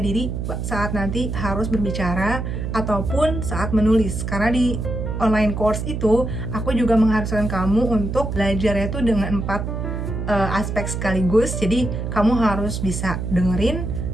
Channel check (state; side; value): noise; right; hum, 4 dB below the sound